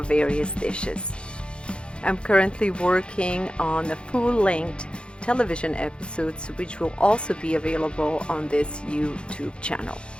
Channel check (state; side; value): late; right; 0.055 ms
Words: various dishes. I'm currently working on the full-length television episodes which will also be available on this YouTube channel.